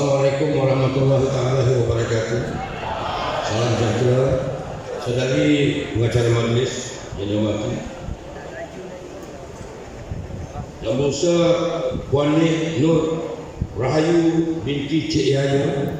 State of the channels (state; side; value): identical; both; correlation 1.00